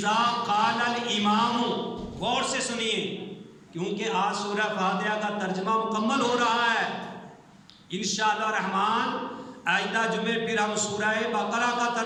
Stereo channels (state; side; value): identical; both; correlation 1.00